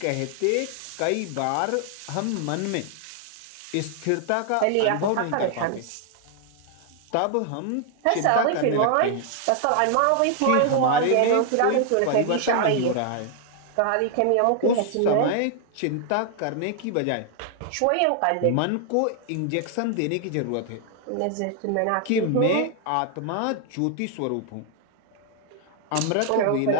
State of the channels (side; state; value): both; different; correlation 0.00